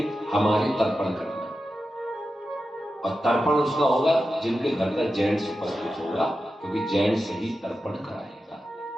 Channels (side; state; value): both; normal; correlation 0.91